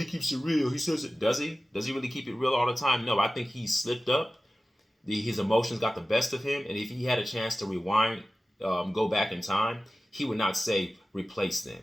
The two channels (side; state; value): both; normal; correlation 0.96